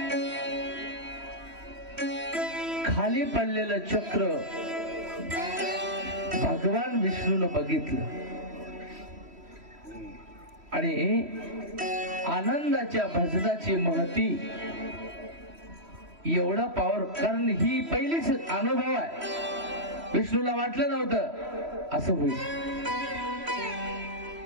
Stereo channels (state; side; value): late; left; 3.1 ms